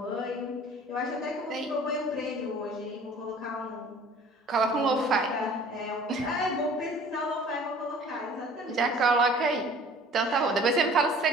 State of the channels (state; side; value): normal; both; correlation 0.49